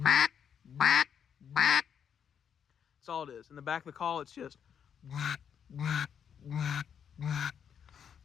mack, mack. That's all it is. In the back of the call, it's just mack, mack, mack, mack.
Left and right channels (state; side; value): quieter; right; 8.0 dB